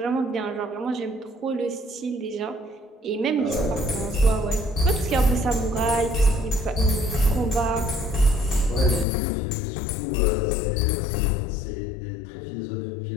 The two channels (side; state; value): right; drops out; at 9.1 s